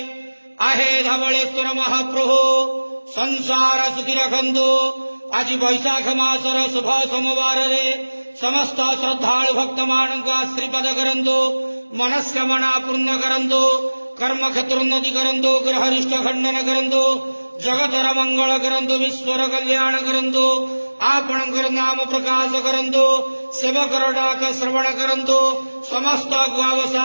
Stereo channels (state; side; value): inverted; both; correlation -1.00